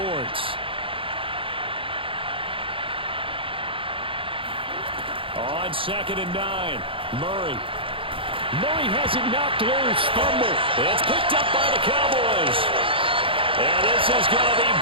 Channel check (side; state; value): left; late; 0.26 ms